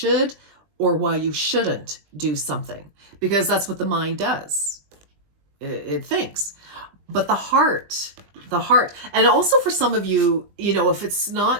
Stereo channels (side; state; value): left; late; 20 ms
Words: or why you shouldn't do something, because that's what the mind does. It thinks. But the heart, and also for some of you, if it's